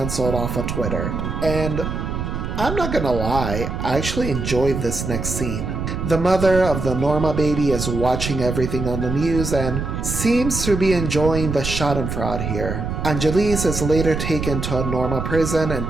off of Twitter. And I'm not gonna lie, I actually enjoyed this next scene. The mother of the Norma baby is watching everything on the news and seems to be enjoying the schadenfreude here. Angelise is later taken to a Norma prison and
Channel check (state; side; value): noise; right; rumble, 4 dB below the sound